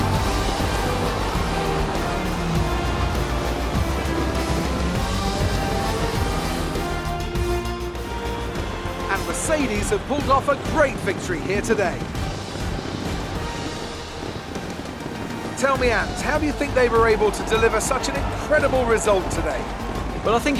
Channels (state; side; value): identical; both; correlation 1.00